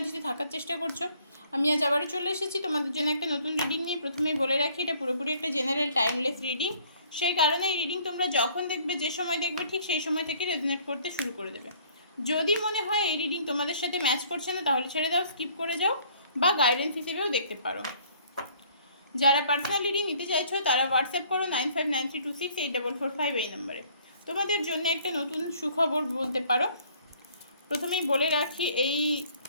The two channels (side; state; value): both; inverted; correlation -0.58